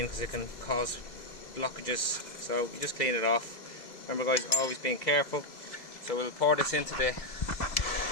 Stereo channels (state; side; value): late; right; 2.3 ms